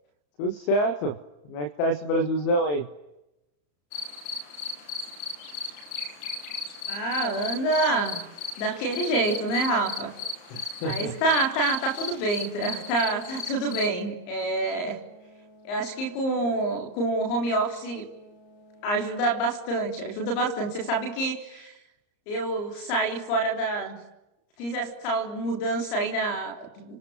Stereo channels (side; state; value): right; late; 34 ms